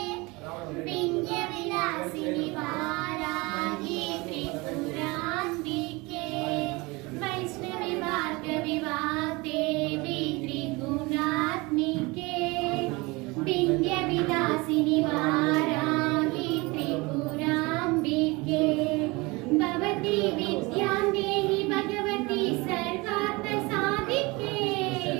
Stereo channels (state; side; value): quieter; left; 24.6 dB